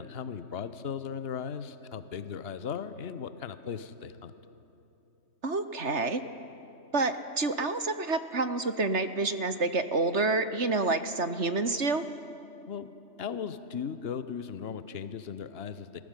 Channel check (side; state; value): left; late; 3.3 ms